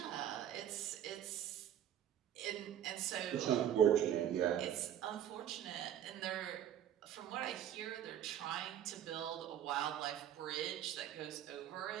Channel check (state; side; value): quieter; left; 10.3 dB